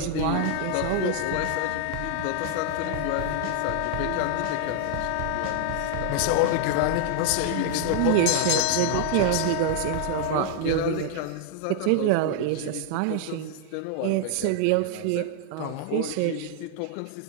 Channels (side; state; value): both; different; correlation 0.00